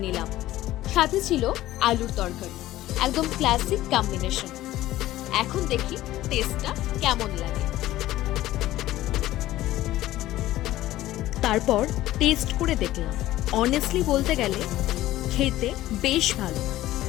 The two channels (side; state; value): right; quieter; 15.3 dB